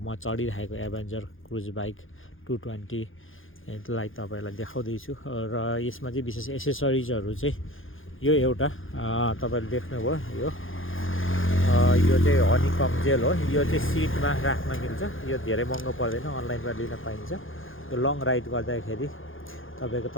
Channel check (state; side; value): late; right; 0.58 ms